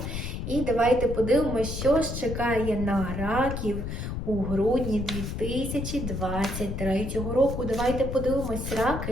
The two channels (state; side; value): noise; left; rumble, 5 dB below the sound